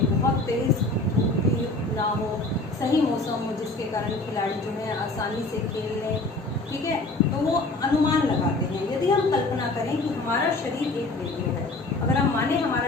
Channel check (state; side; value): quieter; right; 3.0 dB